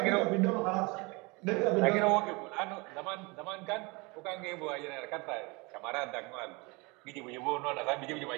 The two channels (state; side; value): quieter; left; 27.0 dB